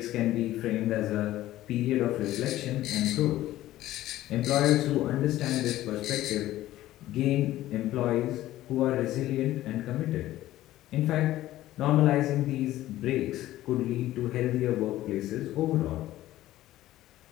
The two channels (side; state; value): right; quieter; 14.9 dB